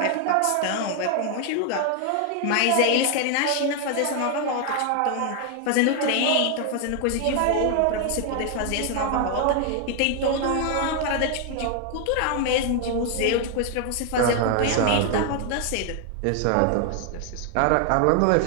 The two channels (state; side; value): different; both; correlation 0.00